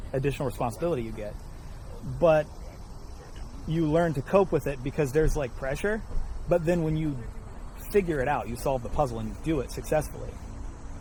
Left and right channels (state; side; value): identical; both; correlation 1.00